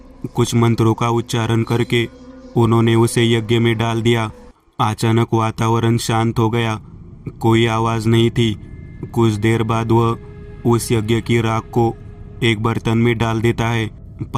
कुछ मंत्रों का उच्चारण करके उन्होंने उसे यज्ञ में डाल दिया। अचानक वातावरण शांत हो गया। कोई आवाज़ नहीं थी। कुछ देर बाद वह उस यज्ञ की राख को एक बर्तन में डाल देता है।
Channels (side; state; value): both; identical; correlation 1.00